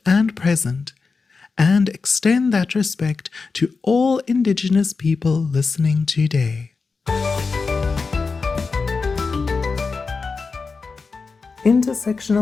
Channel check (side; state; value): right; quieter; 4.5 dB